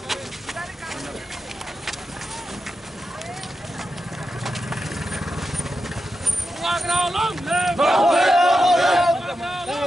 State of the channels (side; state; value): both; normal; correlation 0.89